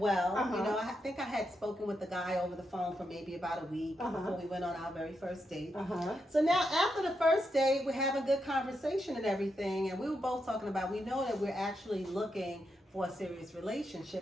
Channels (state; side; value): normal; both; correlation 0.84